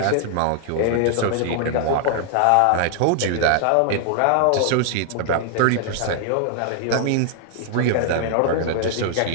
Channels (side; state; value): both; different; correlation 0.00